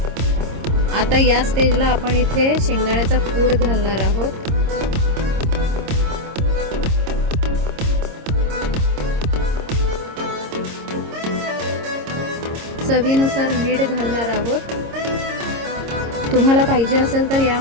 आता या स्टेजला आपण इथे शेंगदाण्याचा कूट घालणार आहोत. चवीनुसार मीठ घालणार आहोत. तुम्हाला पाहिजे असेल तर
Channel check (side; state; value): left; late; 26 ms